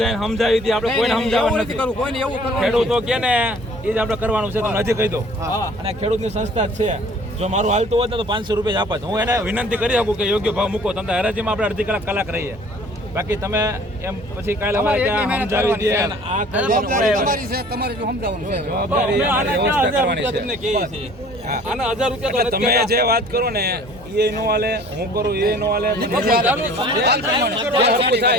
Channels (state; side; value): normal; both; correlation 0.51